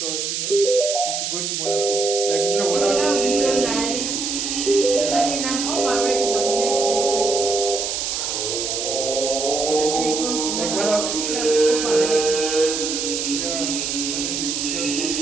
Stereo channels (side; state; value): right; noise; hiss, 2 dB below the sound